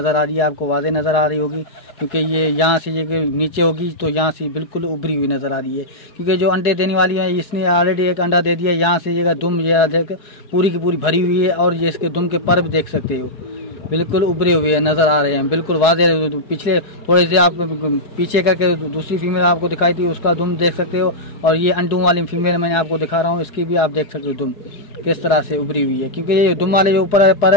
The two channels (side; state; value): right; late; 4.7 ms